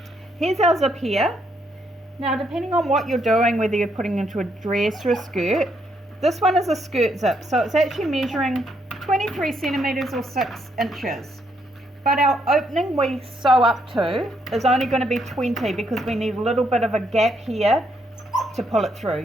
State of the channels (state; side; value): normal; both; correlation 0.74